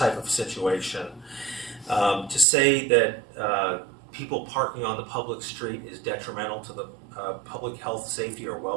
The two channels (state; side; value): drops out; left; at 2.5 s